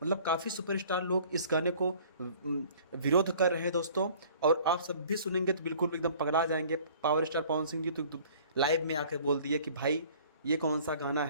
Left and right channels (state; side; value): inverted; both; correlation -0.51